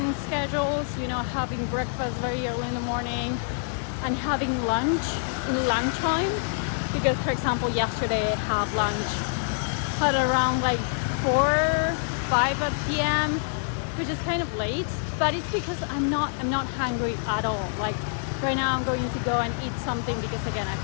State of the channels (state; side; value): silent; right; digital silence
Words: schedules, you know, having breakfast very early in the morning and having lunch in lunchtime. Because for example, yesterday I had lunch at around like 4-5 p.m., which is kind of late, but it's because I'm not hungry at all. Like right now I'm going to go and eat something because again I